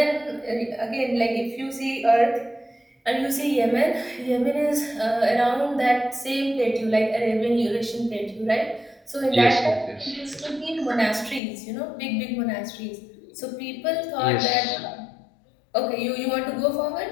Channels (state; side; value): drops out; right; at 11.4 s